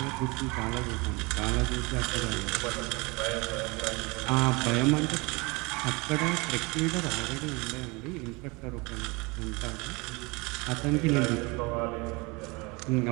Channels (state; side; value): quieter; left; 26.6 dB